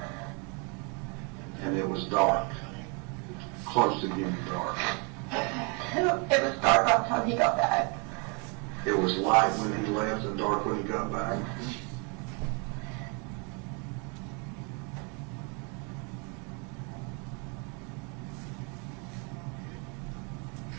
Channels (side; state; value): left; quieter; 34.2 dB